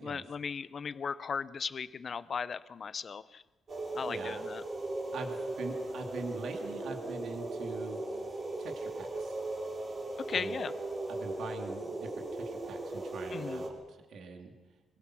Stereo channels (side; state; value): both; normal; correlation 0.84